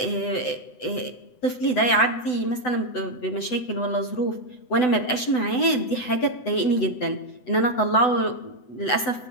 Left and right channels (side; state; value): right; late; 8.0 ms